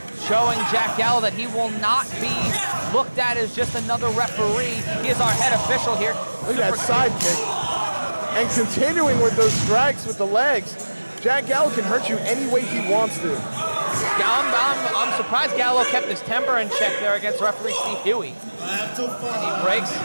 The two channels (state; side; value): inverted; both; correlation -1.00